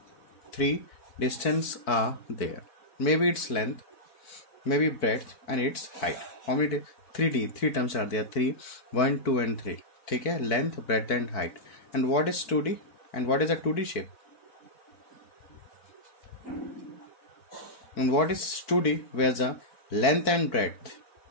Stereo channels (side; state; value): right; late; 4.5 ms